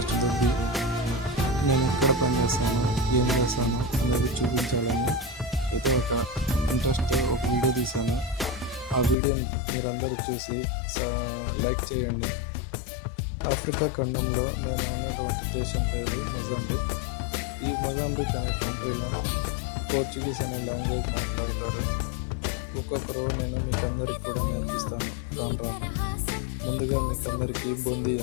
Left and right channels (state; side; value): drops out; right; at 9.2 s